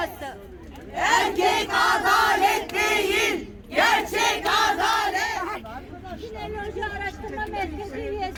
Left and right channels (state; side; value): identical; both; correlation 1.00